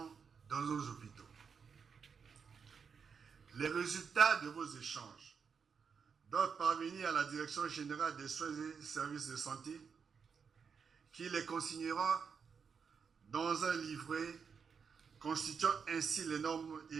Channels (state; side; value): quieter; left; 6.2 dB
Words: dans nos hôpitaux. Les résultats de vos échanges doivent parvenir à la Direction générale des soins et services de santé qui les consignera dans un livret constituant ainsi les normes